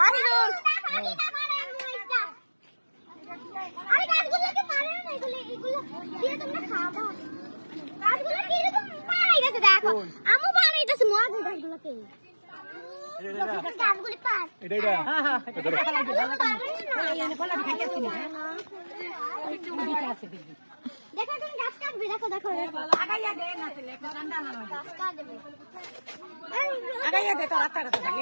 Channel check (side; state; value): both; inverted; correlation -1.00